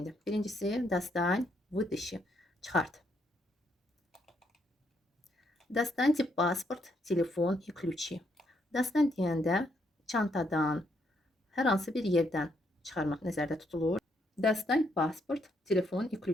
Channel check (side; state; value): both; normal; correlation 0.74